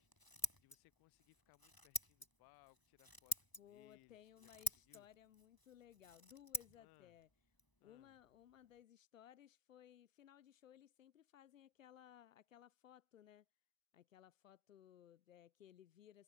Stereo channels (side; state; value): right; late; 1.0 ms